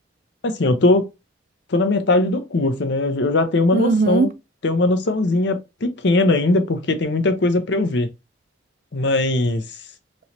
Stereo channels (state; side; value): normal; both; correlation 0.36